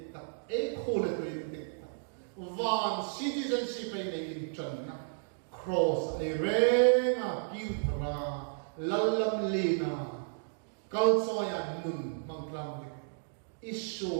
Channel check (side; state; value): left; silent; digital silence